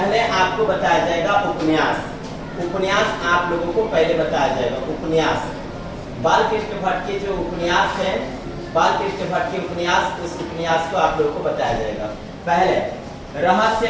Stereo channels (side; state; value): both; identical; correlation 1.00